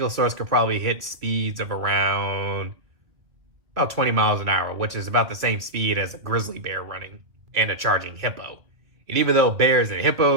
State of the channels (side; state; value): left; late; 2.6 ms